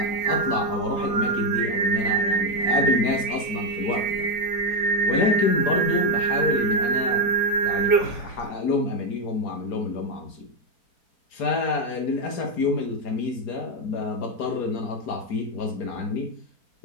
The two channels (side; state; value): right; late; 4.9 ms